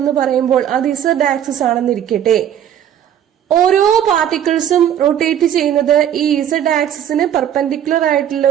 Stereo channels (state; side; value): quieter; left; 10.0 dB